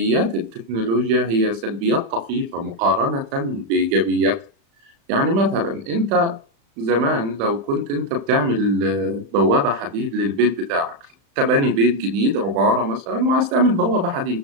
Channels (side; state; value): left; late; 35 ms